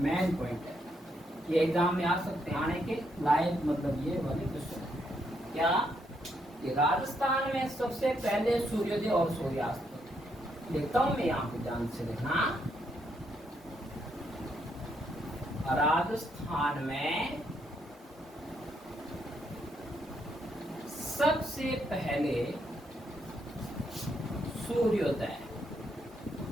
पॉइंट है, ये एग्जाम में आ सकते हैं, आने के लायक मतलब ये वाले क्वेश्चन। क्या कि राजस्थान में सबसे पहले सूर्योदय और सूर्यास्त। लिखता हूं मैं यहाँ पे, ध्यान से देखना। राजस्थान में सबसे पहले सूर्योदय,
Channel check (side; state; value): both; normal; correlation 0.76